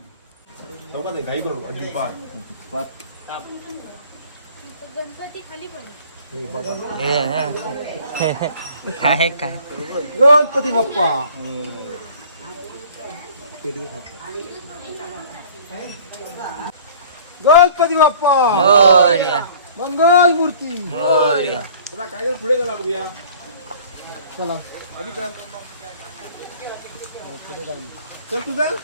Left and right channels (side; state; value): both; inverted; correlation -0.49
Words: चौकात आहे, घाई करू अजिबात. गणपती खाली पडे. काय काय गणपती बाप्पा गणपती बाप्पा मोरया, मंगल मूर्ती. मोरया. चला काय पुढे चला बघूया. चला अभी चल चल तुझा